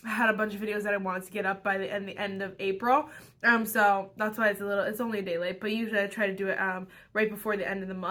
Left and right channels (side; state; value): both; identical; correlation 1.00